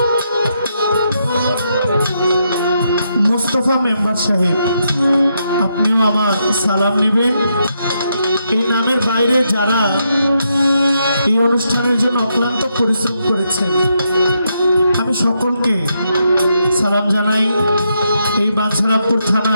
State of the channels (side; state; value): both; inverted; correlation -0.80